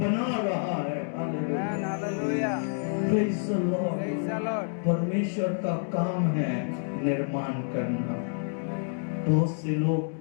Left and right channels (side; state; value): right; silent; digital silence